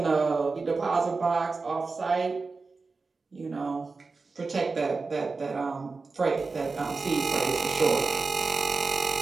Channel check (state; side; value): quieter; left; 4.1 dB